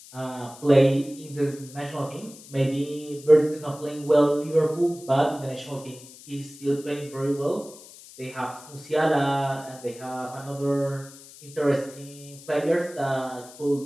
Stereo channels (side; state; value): left; noise; hiss, 19 dB below the sound